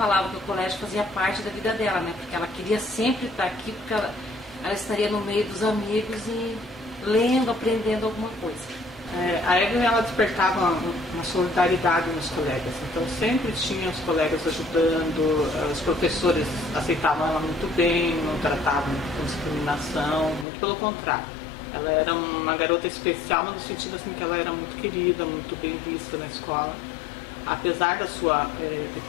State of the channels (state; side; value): drops out; right; at 20.5 s